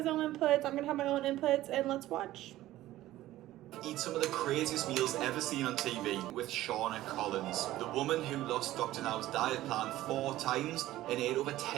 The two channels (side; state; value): left; quieter; 15.3 dB